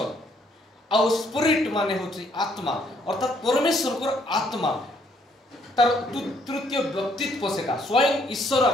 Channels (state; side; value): normal; both; correlation 0.68